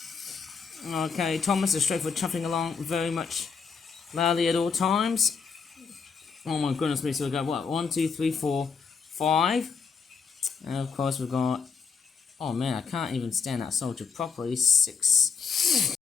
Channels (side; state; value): right; quieter; 5.7 dB